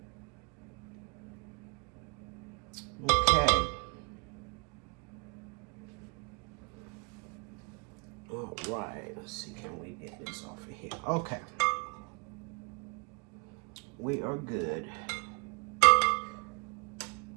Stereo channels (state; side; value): quieter; left; 31.0 dB